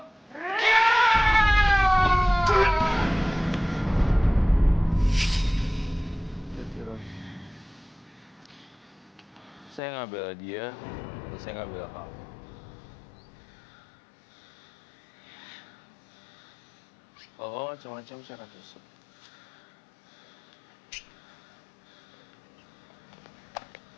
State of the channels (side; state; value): right; drops out; at 9.8 s